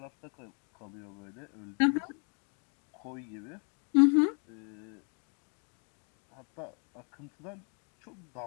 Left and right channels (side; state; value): right; quieter; 39.3 dB